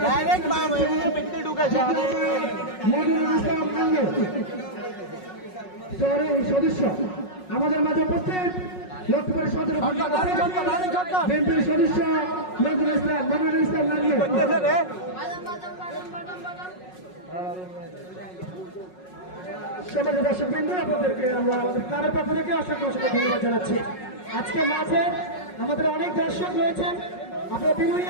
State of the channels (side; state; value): right; late; 5.4 ms